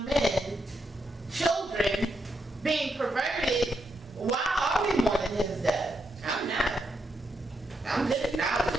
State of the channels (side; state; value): both; normal; correlation 0.82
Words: men, children, being perverted, why are we mourning his death? I'm not. I'm just